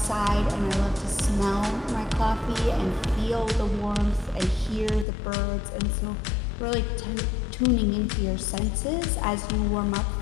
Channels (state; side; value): drops out; right; at 5.1 s